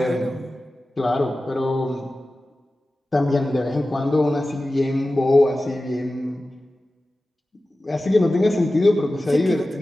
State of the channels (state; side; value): normal; both; correlation 0.95